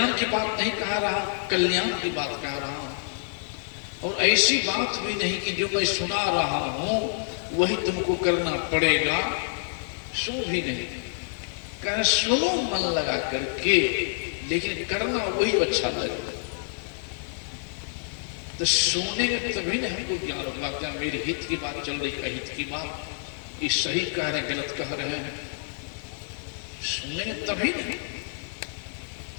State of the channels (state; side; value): silent; right; 55 dB below the other